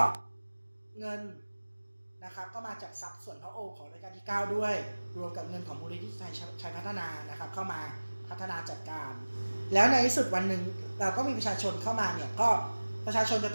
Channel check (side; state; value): both; inverted; correlation -1.00